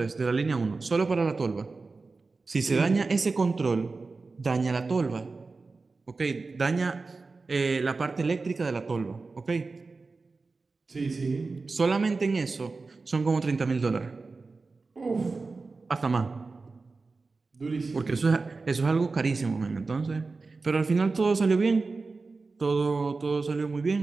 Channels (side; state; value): left; quieter; 4.0 dB